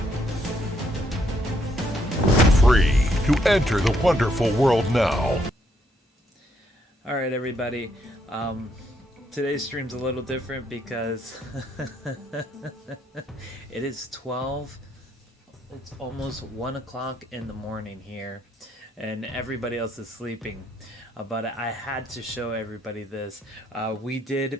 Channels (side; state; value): both; normal; correlation 0.72